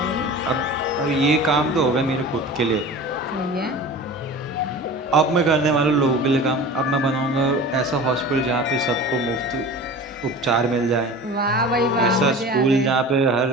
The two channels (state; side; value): normal; both; correlation 0.36